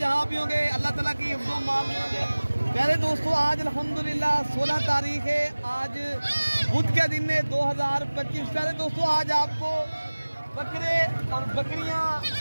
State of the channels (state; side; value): inverted; both; correlation -1.00